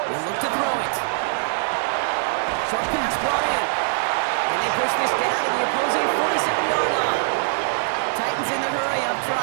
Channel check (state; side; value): silent; left; digital silence